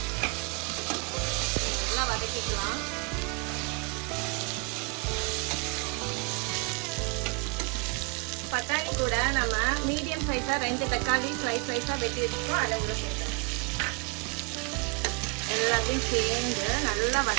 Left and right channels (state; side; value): quieter; left; 33.6 dB